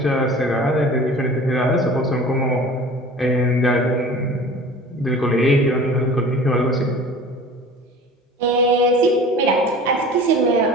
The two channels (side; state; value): both; normal; correlation 0.42